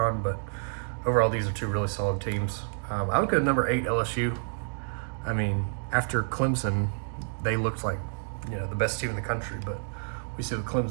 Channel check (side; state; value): left; silent; digital silence